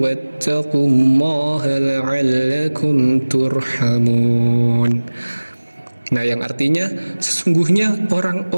wattaqullaha la'allakum turhamun. Nah, yang artinya sesungguhnya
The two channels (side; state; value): both; inverted; correlation -1.00